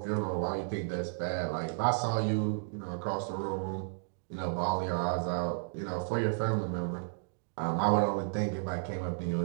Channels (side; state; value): left; silent; digital silence